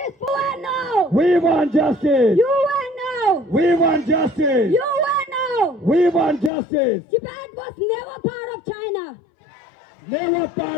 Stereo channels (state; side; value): drops out; right; at 6.5 s